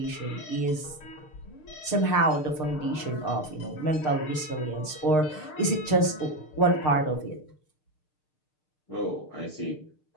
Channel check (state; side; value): late; right; 6.6 ms